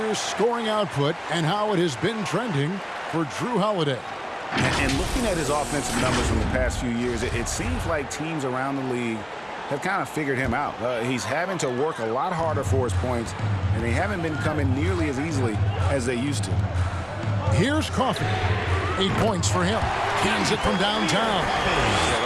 scoring output and how it has been trending for Drew Holiday. And looking at his offensive numbers from the past few years, it seems like teams around the league have kind of figured him out. He's having to work a lot harder for his points, and they haven't been coming nearly as easily as they used to. Here's Coffey. 8 points for him. Cans it from downtown.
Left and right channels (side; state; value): both; identical; correlation 1.00